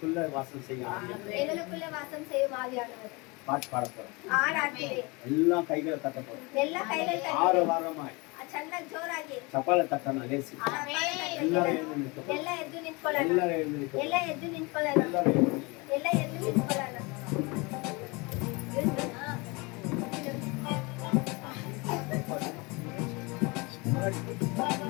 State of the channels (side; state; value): right; quieter; 26.9 dB